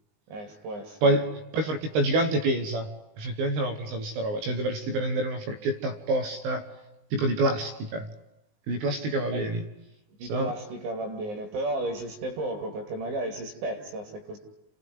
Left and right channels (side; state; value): left; late; 19 ms